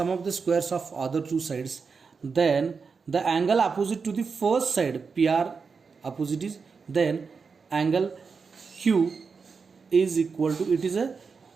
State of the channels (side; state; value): left; quieter; 5.2 dB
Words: of the squares of other two sides, then the angle opposite to the first side, PR opposite is, then angle Q is equal to, it is a